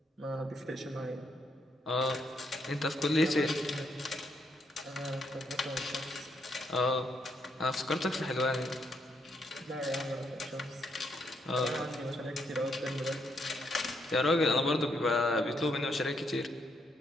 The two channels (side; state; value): both; normal; correlation 0.76